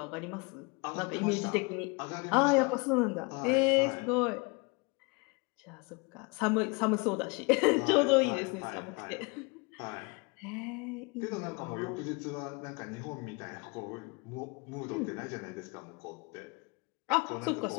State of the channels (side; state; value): right; quieter; 29.6 dB